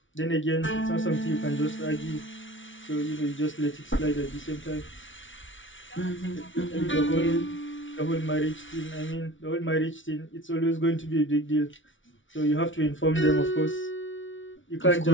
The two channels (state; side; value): late; right; 0.56 ms